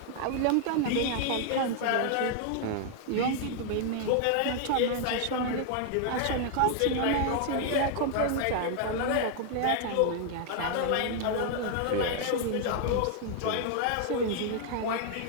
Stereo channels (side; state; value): both; different; correlation 0.00